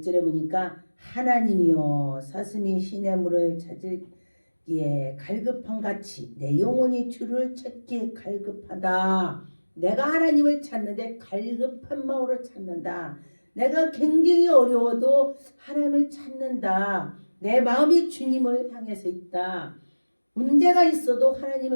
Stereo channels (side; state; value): both; inverted; correlation -1.00